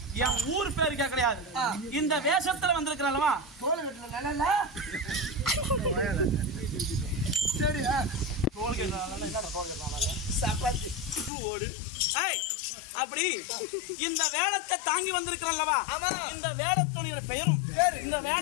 என் ஊர் பேருக்கே கிடையாது. இந்த வேஷத்துல வந்திருக்கிறல்லவா சரி அப்படி இந்த வேடத்தை தாங்கி வந்திருக்கிறல்லவா இந்த வேடத்தோட பெயரும் இந்த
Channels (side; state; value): right; drops out; at 11.3 s